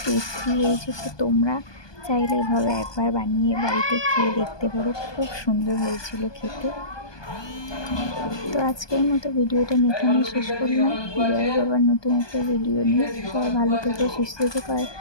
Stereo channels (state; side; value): late; right; 1.2 ms